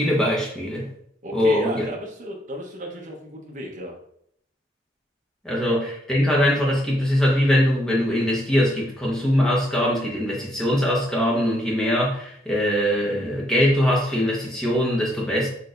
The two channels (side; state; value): both; normal; correlation 0.72